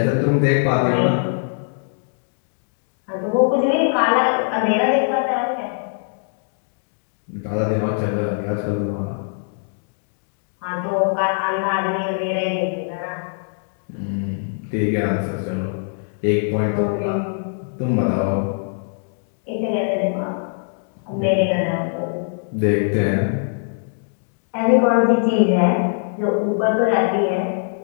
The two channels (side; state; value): right; silent; digital silence